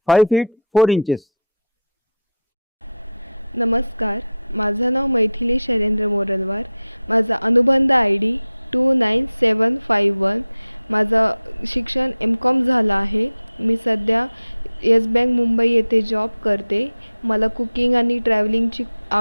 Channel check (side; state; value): both; inverted; correlation -0.74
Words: 5 feet 4 inches. नमस्कार, माझं नाव मैथिली शैलेंद्र मोरलवार. माझा अनुबंध ID 29751. माझं शिक्षण M.Com झालं आहे. मी सध्या येस बँक मुंबई येथे जॉब करते. मला कुकिंग आणि ट्रॅव्हलिंगची